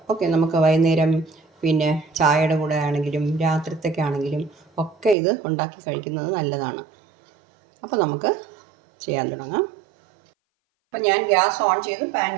ഓക്കെ. നമുക്ക് വൈകുന്നേരം പിന്നെ ചായയുടെ കൂടെ ആണെങ്കിലും രാത്രിത്തേക്ക് ആണെങ്കിലും ഒക്കെ ഇത് ഉണ്ടാക്കി കഴിക്കുന്നത് നല്ലതാണ്. അപ്പോൾ നമുക്ക് ചെയ്യാൻ തുടങ്ങാം. അപ്പോൾ ഞാൻ ഗ്യാസ് ഓൺ ചെയ്ത് പാൻ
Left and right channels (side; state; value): left; drops out; at 5.2 s